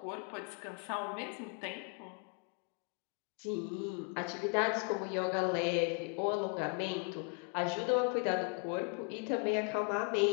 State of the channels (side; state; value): right; quieter; 34.7 dB